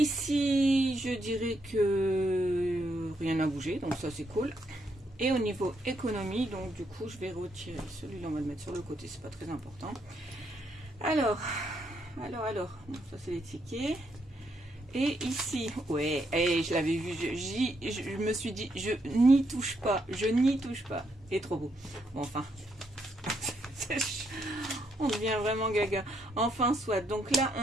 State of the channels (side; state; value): both; normal; correlation 0.77